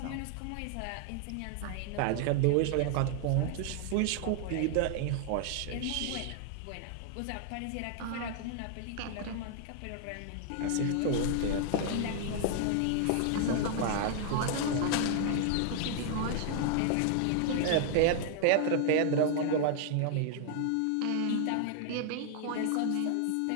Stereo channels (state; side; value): different; both; correlation 0.00